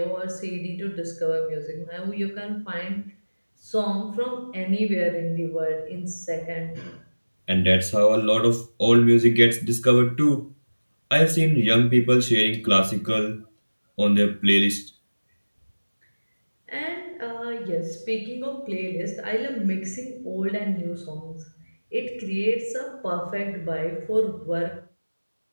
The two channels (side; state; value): both; inverted; correlation -1.00